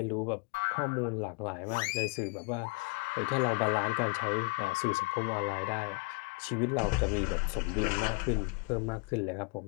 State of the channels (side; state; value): right; quieter; 29.1 dB